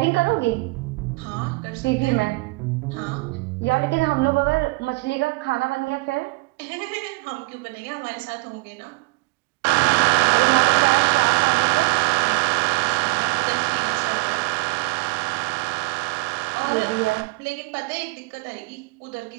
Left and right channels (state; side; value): quieter; left; 26.0 dB